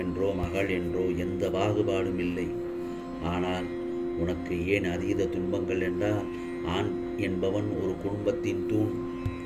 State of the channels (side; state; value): both; identical; correlation 1.00